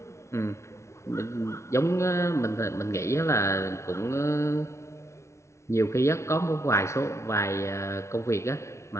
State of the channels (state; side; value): late; right; 0.14 ms